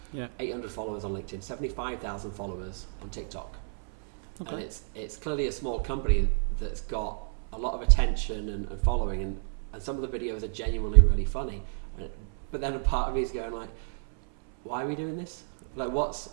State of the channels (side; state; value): left; silent; 58 dB below the other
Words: 800 followers on LinkedIn, 75,000 followers on TikTok. Okay. And it's clearly a small company that's got a lot of attention and following, and some of the videos are genuinely really funny. But then a part of me is going like, why are we doing this? Like, what